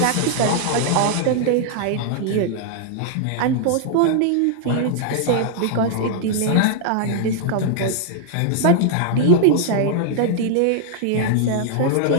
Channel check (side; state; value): both; different; correlation -0.01